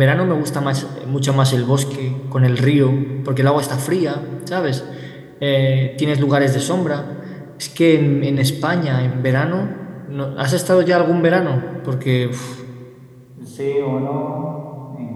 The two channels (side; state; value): both; identical; correlation 1.00